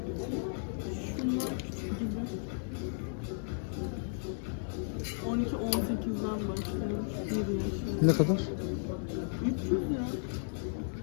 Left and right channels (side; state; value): right; silent; digital silence